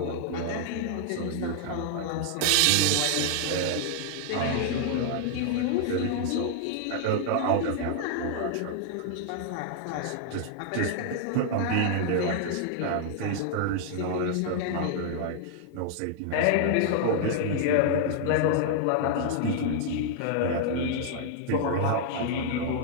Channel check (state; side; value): different; both; correlation -0.01